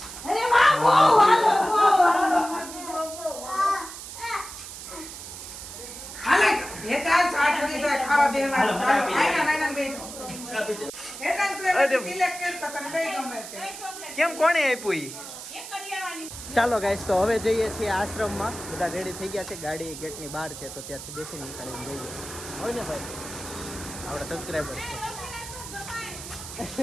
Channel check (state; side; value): noise; right; hiss, 11 dB below the sound